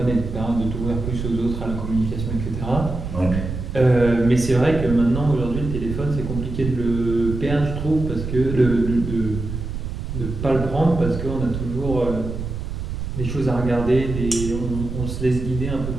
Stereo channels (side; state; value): right; noise; rumble, 6 dB below the sound